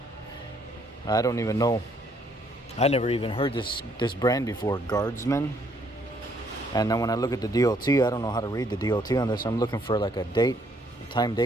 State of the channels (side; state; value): both; normal; correlation 0.68